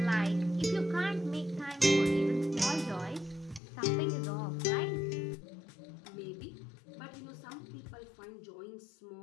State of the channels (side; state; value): right; drops out; at 3.6 s